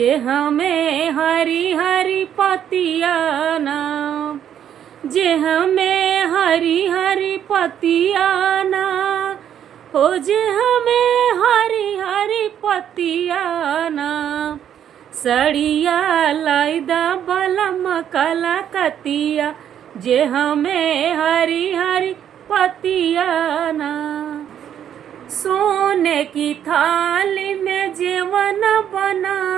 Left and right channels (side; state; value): left; quieter; 9.7 dB